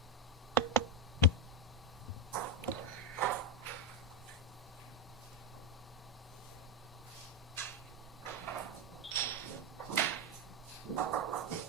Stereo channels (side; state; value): both; normal; correlation 0.07